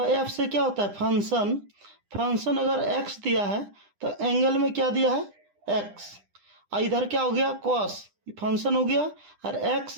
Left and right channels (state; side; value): late; left; 9.9 ms